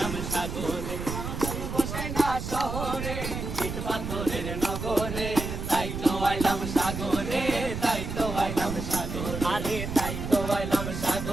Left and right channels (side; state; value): right; noise; rumble, 5 dB below the sound